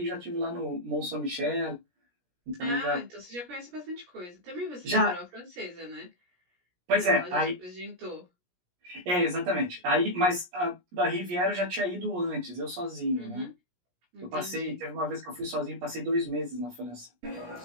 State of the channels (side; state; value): left; late; 17 ms